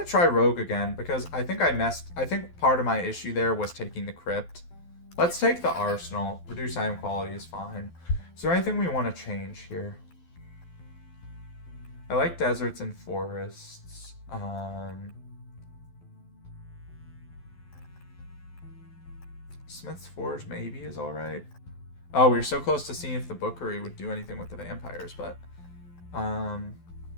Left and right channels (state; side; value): late; right; 12 ms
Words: try Rogue again, because I think I think part of my issue there was taking the Crypt. Let's take the Arsenal. Reduce item quality is fine. Is there anything we want to change here? I like deserts and forests. Smith's Forge maybe is alright. Oh, we were so close to seeing if the Bookery would do anything with the vampires, but...